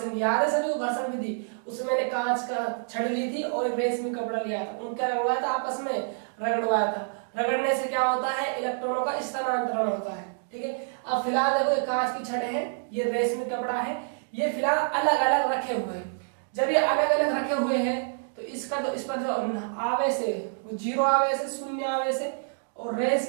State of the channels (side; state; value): left; silent; digital silence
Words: याद है सभी को, घर्षण विधि। उसमें मैंने कांच का छड़ ली थी और रेशमी कपड़ा लिया था, उनका रगड़वाया था, आपस में रगड़वाया था। रगड़ने से क्या होता है, इलेक्ट्रॉनों का स्थानांतरण होता है। ठीक है, अब फिलहाल देखो ये कांच की छड़ है, ये रेशमी कपड़ा है, ये फिलहाल अलग अलग रखे हुए हैं। जब ये अलग अलग रखे हुए हैं तो इसका जो इस पर जो आवेश है वो जीरो आवेश है, शून्य आवेश है, और